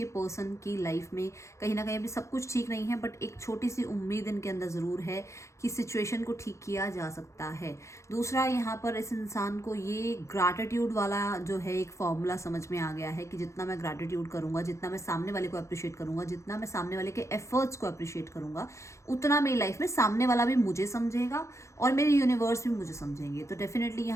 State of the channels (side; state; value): right; late; 0.14 ms